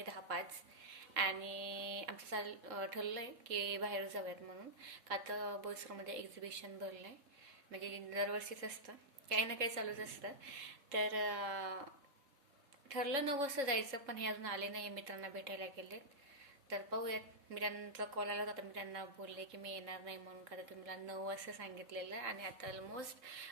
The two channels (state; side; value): late; left; 3.7 ms